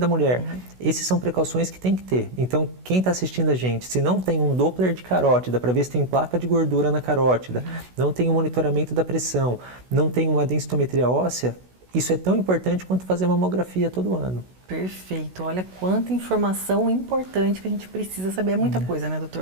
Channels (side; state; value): left; late; 16 ms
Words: da mulher. Essas são precauções que tem que ter. Então, quem está assistindo a gente, se não tem um Doppler de carótida para ver se tem placa de gordura na carótida, não tem um monitoramento da pressão, não tem uma densitometria óssea, isso é tão importante quanto fazer mamografia todo ano. Perfeito. Olha quanta informação importante que a gente precisa saber. É muita coisa, né,